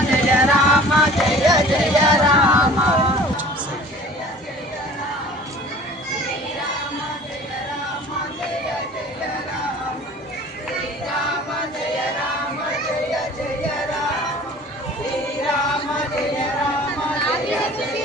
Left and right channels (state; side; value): normal; both; correlation 0.46